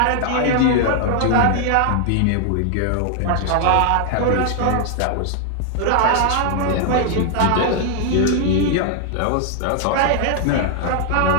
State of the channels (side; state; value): both; different; correlation 0.00